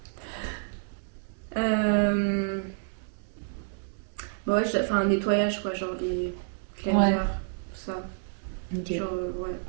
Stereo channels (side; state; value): left; silent; 58 dB below the other